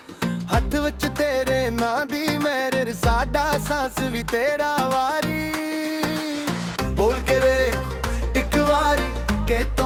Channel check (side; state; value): both; identical; correlation 1.00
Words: ਹੱਥ ਵਿੱਚ ਤੇਰੇ ਨਾਂ ਦੀ ਮੇਰੇ, ਸਾਡਾ ਸਾਂਸ ਵੀ ਤੇਰਾ ਵਾਰੀ। ਬੋਲ ਕੇ ਵੇ ਇੱਕ ਵਾਰੀ ਕਿ